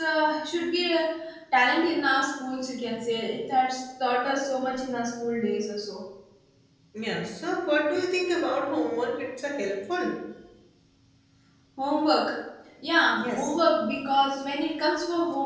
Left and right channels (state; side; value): identical; both; correlation 1.00